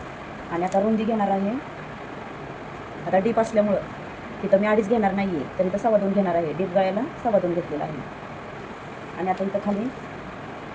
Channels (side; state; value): both; identical; correlation 1.00